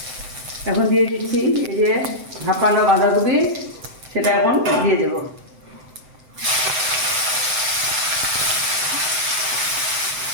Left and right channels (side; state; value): left; late; 7.8 ms